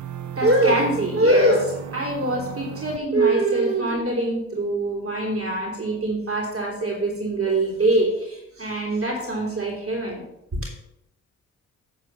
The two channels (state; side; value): normal; both; correlation 0.15